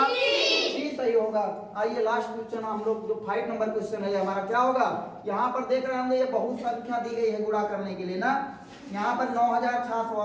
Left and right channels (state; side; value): identical; both; correlation 1.00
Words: सी सही होगा। आइए लास्ट क्वेश्चन हम लोग, जो 5 नंबर क्वेश्चन है हमारा क्या होगा। यहाँ पर देख रहे होंगे ये बहुत संख्या दी गई है गुणा करने के लिए ना। यहाँ पर